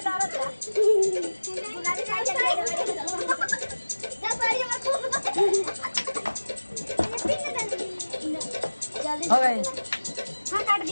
हो गई। हाँ काट दी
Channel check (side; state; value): both; inverted; correlation -1.00